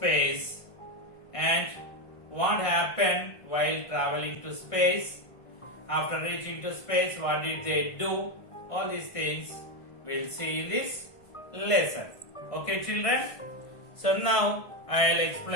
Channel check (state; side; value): late; right; 1.5 ms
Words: and what happened while traveling to space. After reaching to space, what did they do? All these things we'll see in this lesson. Okay, children? So now I'll